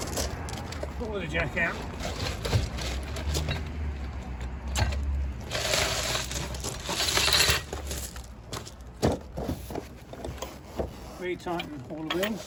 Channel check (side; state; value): both; identical; correlation 1.00